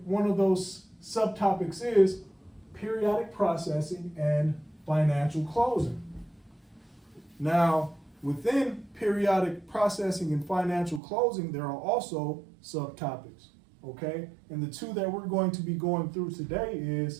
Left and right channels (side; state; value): left; drops out; at 11.0 s